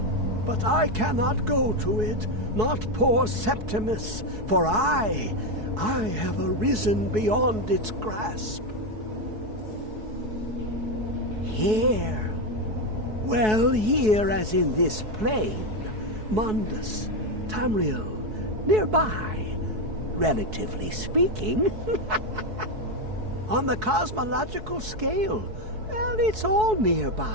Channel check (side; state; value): left; late; 4.7 ms